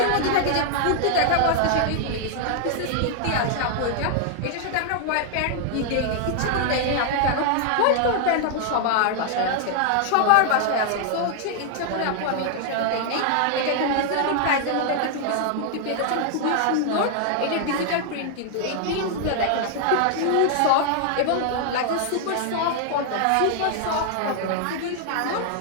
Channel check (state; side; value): different; both; correlation 0.00